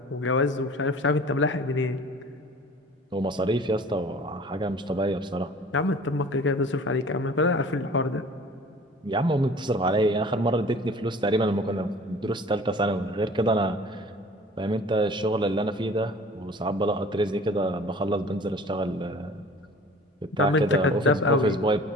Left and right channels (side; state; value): both; normal; correlation 0.46